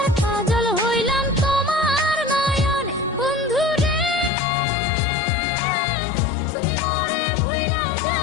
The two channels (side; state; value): right; drops out; at 4.3 s